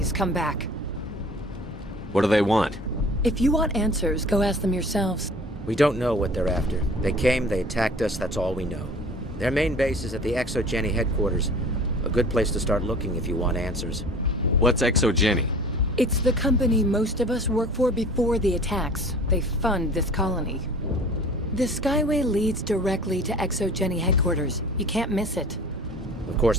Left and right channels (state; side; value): normal; both; correlation 0.44